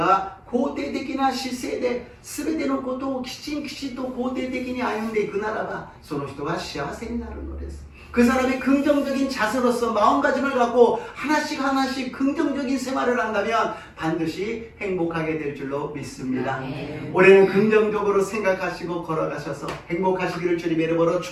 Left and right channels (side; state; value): both; identical; correlation 1.00